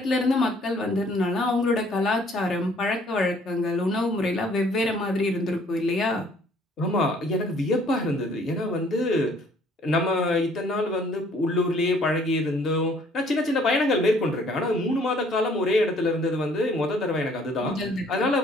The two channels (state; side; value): normal; both; correlation 0.60